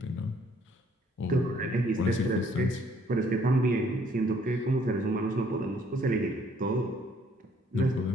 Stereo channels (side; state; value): both; normal; correlation 0.63